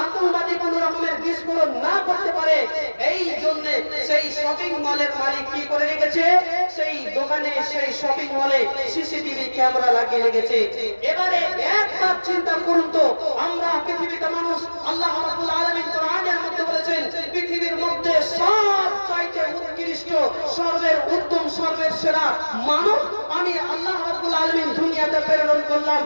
আতঙ্কবাদী কোন রকমের বিস্ফোরণ না করতে পারে, এই জন্য সেই শপিং মলের মালিক কি করে রেখেছে, সেই দোকানে সেই শপিং মলে সিসিটিভি ক্যামেরা লাগিয়ে রেখেছে। এবারে একবার চিন্তা করুন তো, আমরা পৃথিবীতে মানুষ, আল্লাহ রাব্বুল আলামিন কোরআনের মধ্যে বলেছেন পৃথিবীর মধ্যে সবচাইতে উৎকৃষ্ট, সর্বের উত্তম, সর্বের সেরা মানব আমি আল্লাহ রাব্বুল আলামিন দুনিয়াতে প্রেরণ করলাম।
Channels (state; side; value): inverted; both; correlation -1.00